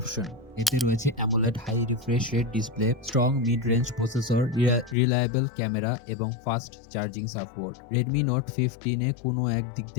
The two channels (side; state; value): right; drops out; at 5.0 s